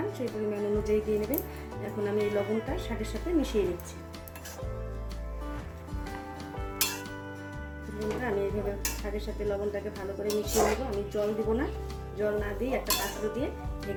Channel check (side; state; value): both; identical; correlation 1.00